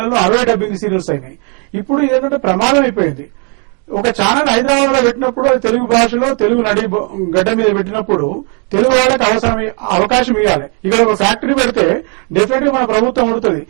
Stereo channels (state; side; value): quieter; left; 37.6 dB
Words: 60 డబ్బింగ్ సీరియల్స్ అయినాయి. ఇప్పుడు ఇదేంటంటే ప్రమాదం అయిపోయింది. ఒక ఛానల్ హైదరాబాద్ లో పెట్టినప్పుడు అది తెలుగు భాషలో తెలుగు నడి గడ్డ మీద పెట్టినప్పుడు తెలుగు వాళ్ళకి అవకాశం ఇవ్వాలి. ఇక్కడ ఒక ఫ్యాక్టరీ పెడితే డెఫినెట్ గా మన ప్రభుత్వం ఉడుతుంది.